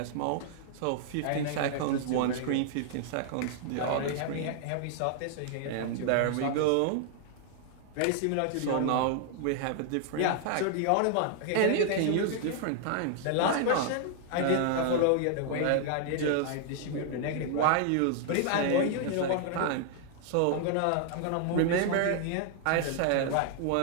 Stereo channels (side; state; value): both; different; correlation 0.00